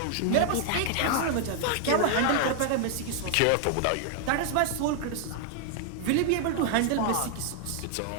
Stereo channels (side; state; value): both; different; correlation 0.00